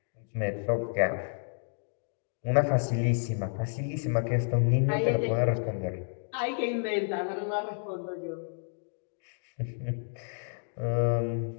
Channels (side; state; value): right; silent; digital silence